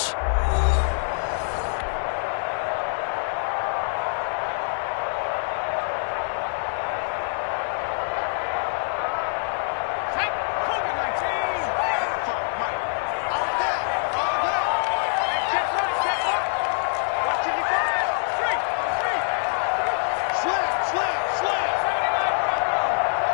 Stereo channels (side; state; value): right; silent; digital silence